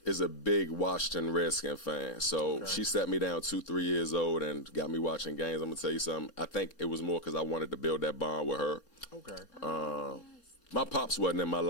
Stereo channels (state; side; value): late; right; 4.3 ms